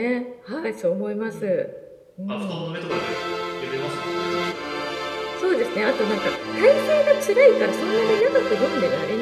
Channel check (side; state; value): both; identical; correlation 1.00